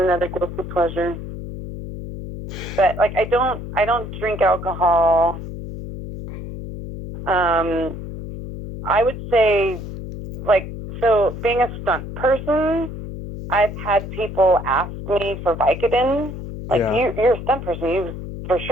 guilty pleasure. But like I don't drink alcohol. I would say so being a stunt person, I've had people ask me for Vicodin. You're a stunt person, for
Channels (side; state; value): left; noise; hum, 9 dB below the sound